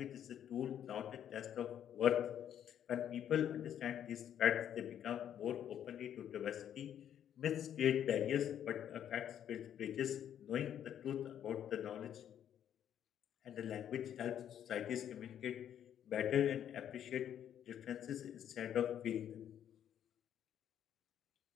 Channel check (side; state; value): right; quieter; 9.9 dB